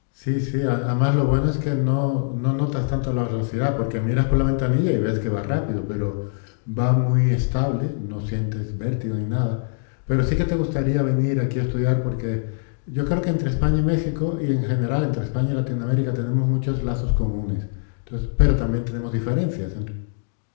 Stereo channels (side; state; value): right; silent; digital silence